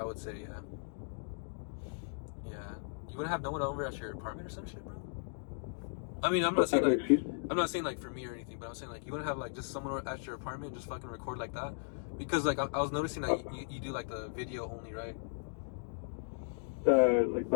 would say. Yeah. You wouldn't have no one over at your apartment or some shit, bro? I mean, I'm not saying like for me or anything, but I'm saying like you wouldn't have like just someone at your apartment and just fucking record like that, because like I was noticing that you do like the video only, right? Like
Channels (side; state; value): right; silent; digital silence